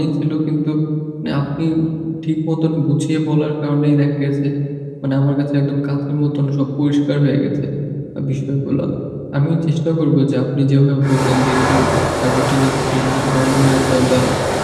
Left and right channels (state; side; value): identical; both; correlation 1.00